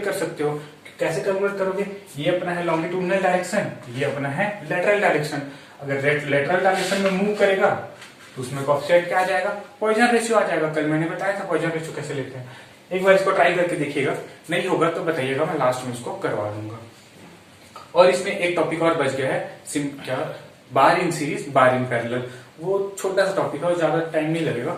कर सकते हो। कैसे कैलकुलेट करोगे, ये अपना है लॉन्गिट्यूडनल डायरेक्शन, ये अपना है लेटरल डायरेक्शन। अगर लेटरल डायरेक्शन में मूव करेगा तो उसमें कोएफिशिएंट क्या आ जाएगा, पॉइजन रेशियो आ जाएगा। कल मैंने बताया था पॉइजन रेशियो कैसे लेते हैं, एक बार इसको ट्राई करके देखिएगा, नहीं होगा तो बताइएगा, मैं लास्ट में इसको करवा दूंगा। और इसमें एक टॉपिक और बच गया है, क्या, बार in series bar in parallel. वो छोटा सा टॉपिक है और ज्यादा टाइम नहीं लगेगा,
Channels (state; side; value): identical; both; correlation 1.00